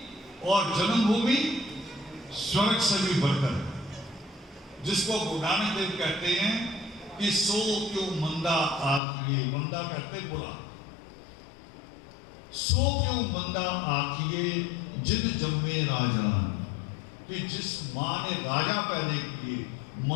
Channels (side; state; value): right; drops out; at 9.0 s